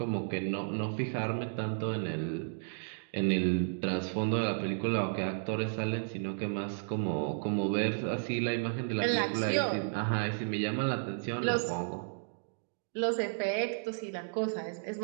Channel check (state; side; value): silent; left; digital silence